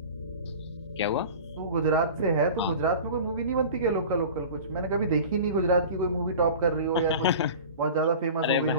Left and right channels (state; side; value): inverted; both; correlation -0.38